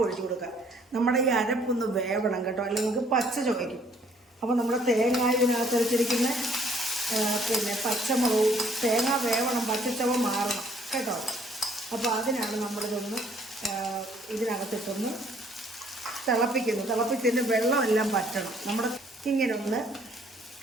ഒഴിച്ചു കൊടുക്കുക. നമ്മുടെ ഈ അരപ്പൊന്ന് വേവണം കേട്ടോ, അല്ലെങ്കിൽ നമുക്ക് പച്ച ചുവയ്ക്കും. അപ്പോൾ നമ്മുടെ തേങ്ങ ഇതിനകത്ത് വെച്ചിരിക്കുന്ന പിന്നെ പച്ചമുളകും തേങ്ങ വേവണം, പച്ചച്ചവ മാറണം കേട്ടോ. അപ്പോൾ അതിനാണ് നമ്മളിതൊന്ന് ഇതിനകത്തിട്ടൊന്ന് തിളപ്പിക്കുന്നത്. തിളപ്പിച്ചതിന് വെള്ളമെല്ലാം പറ്റണം. നമ്മുടെ ഇങ്ങനെ ഒന്ന്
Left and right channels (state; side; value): normal; both; correlation 0.62